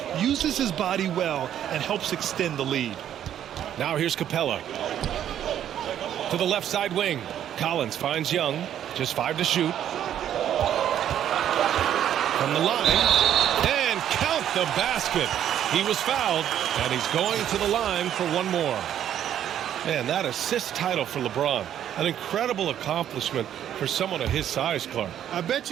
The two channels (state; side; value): quieter; left; 10.4 dB